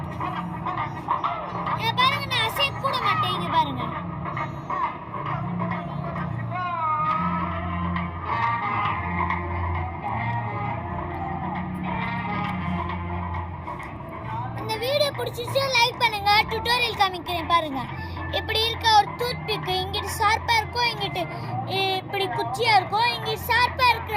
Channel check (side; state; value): both; identical; correlation 1.00